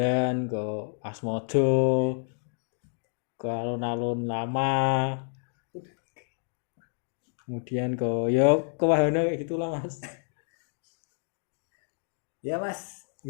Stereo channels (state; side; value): silent; right; digital silence